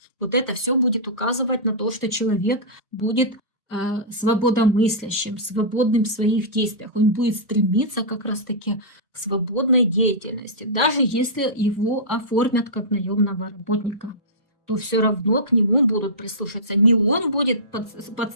Вот это все будет указывать на то, что человек будет свободомыслящим, свободным в своих действиях. Он будет стремиться как раз-таки к свободной деятельности. Даже если его оформят как наемного работника, то все равно к нему будут прислушаться. Не он будет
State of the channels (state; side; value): normal; both; correlation -0.17